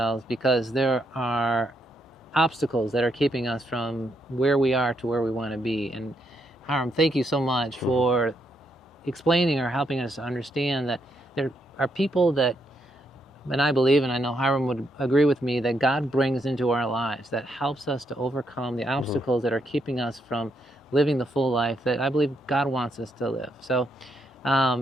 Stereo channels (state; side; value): normal; both; correlation 0.77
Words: because there are obstacles that are keeping us from where we are to where we want to be. And Hiram, thank you so much for explaining or helping us to understand that there are people that, and I believe, and I know Hiram would agree with me, that God brings into our lives that helps us to overcome the obstacles that are keeping us from living the full life that I believe God wants us to live. So